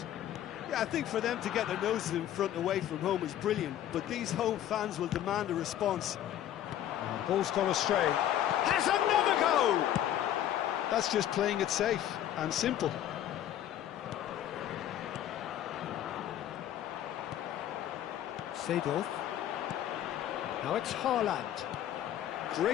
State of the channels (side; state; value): right; quieter; 11.6 dB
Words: Yeah, I think for them to get their noses in front away from home is brilliant, but these home fans will demand a response. Ball's gone astray. Has another go! That's just playing it safe and simple. Seedorf. Now it's Haaland.